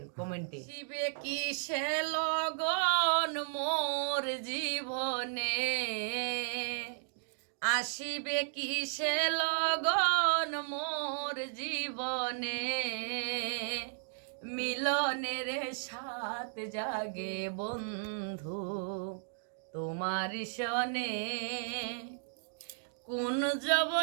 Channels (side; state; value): left; silent; digital silence